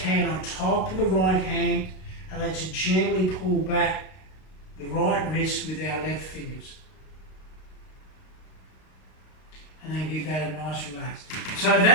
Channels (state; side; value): late; right; 32 ms